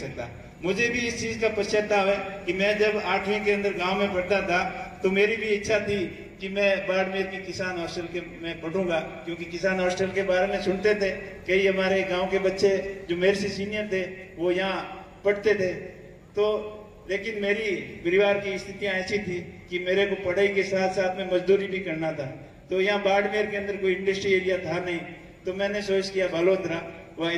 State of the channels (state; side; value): identical; both; correlation 1.00